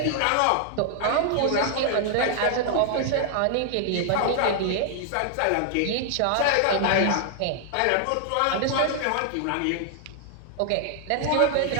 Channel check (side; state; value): both; different; correlation 0.00